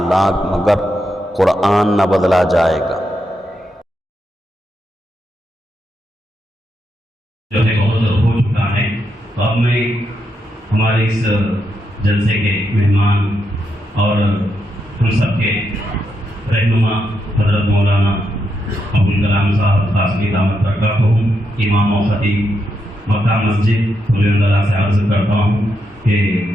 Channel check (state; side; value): normal; both; correlation 0.82